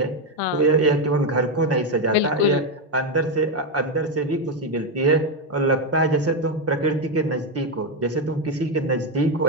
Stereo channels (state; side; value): normal; both; correlation 0.07